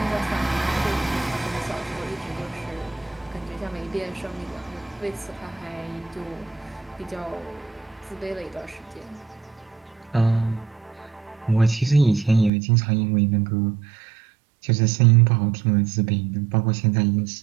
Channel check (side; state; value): left; drops out; at 12.5 s